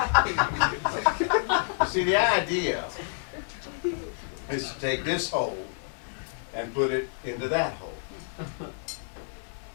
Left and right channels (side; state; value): right; silent; digital silence